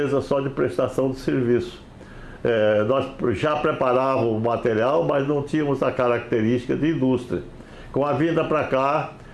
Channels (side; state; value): both; identical; correlation 1.00